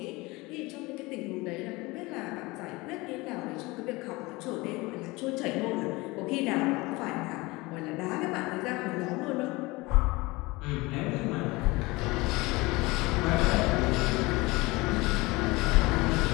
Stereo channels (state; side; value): quieter; right; 22.8 dB